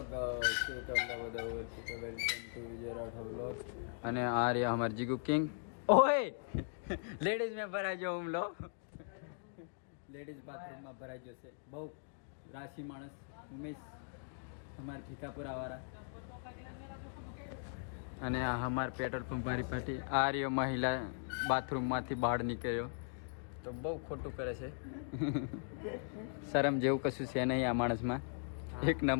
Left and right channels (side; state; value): right; silent; digital silence